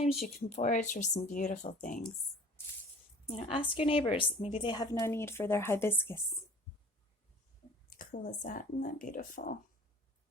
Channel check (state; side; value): normal; both; correlation 0.46